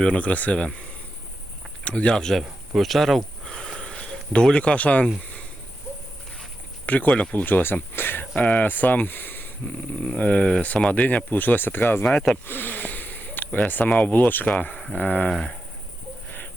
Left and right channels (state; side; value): normal; both; correlation 0.88